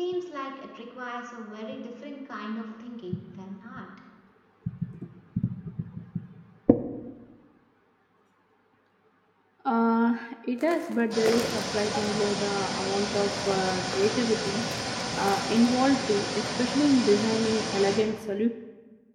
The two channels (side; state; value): both; identical; correlation 1.00